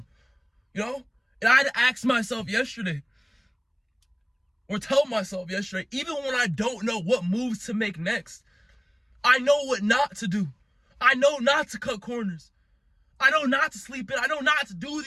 And I had to ask myself yesterday, or tell myself yesterday, even when I don't know what moves to make next, I know what not to do. I know not to cut corners. I know not to sleep in. I know not to do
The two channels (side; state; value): both; identical; correlation 1.00